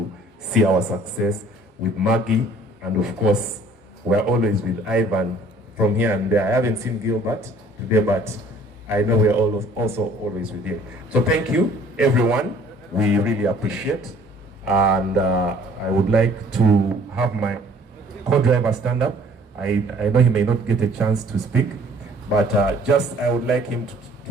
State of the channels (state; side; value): normal; both; correlation 0.55